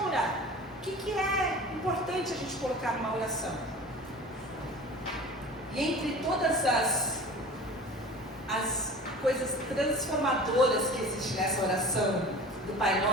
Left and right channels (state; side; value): normal; both; correlation 0.39